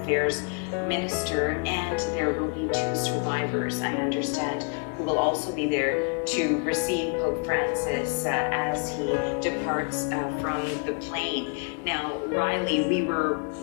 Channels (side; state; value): right; quieter; 36.7 dB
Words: Minister, and there will be 2 survivors, I understand, who will also be there to receive Pope Francis as he departs from the plane. Now, Riley, we were